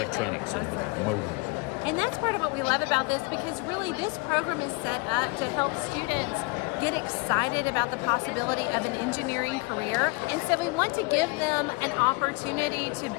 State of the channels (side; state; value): right; quieter; 27.8 dB